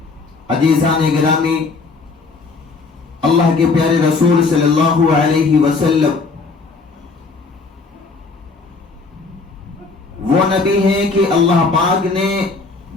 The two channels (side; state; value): right; quieter; 4.1 dB